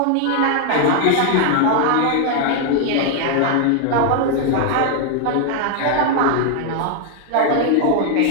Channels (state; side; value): different; both; correlation 0.00